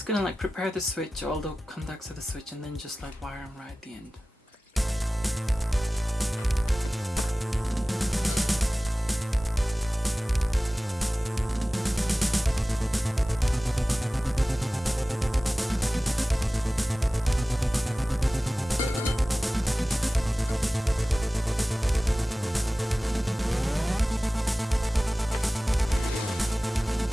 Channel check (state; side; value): normal; both; correlation 0.97